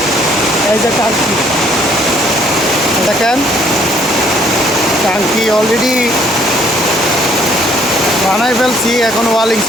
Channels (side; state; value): both; normal; correlation 0.63